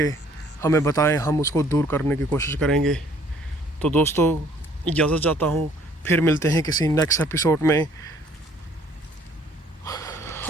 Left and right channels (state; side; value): normal; both; correlation 0.59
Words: हमें बताएं, हम उसको दूर करने की कोशिश करेंगे। तो दोस्तों इजाज़त चाहता हूँ, फिर मिलते हैं किसी नेक्स्ट एपिसोड में।